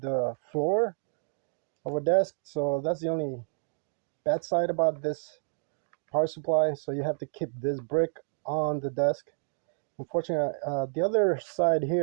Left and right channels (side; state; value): left; silent; digital silence